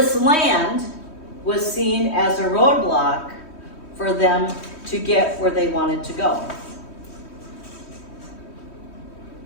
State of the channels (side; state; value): right; late; 3.1 ms